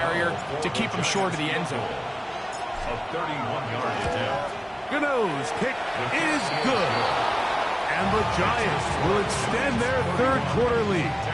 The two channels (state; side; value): identical; both; correlation 1.00